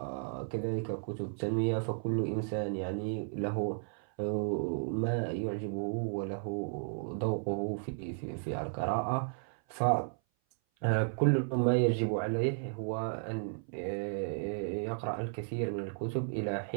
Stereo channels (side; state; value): left; silent; 55 dB below the other